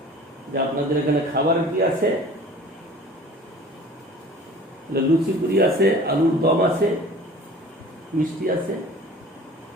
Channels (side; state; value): both; normal; correlation 0.45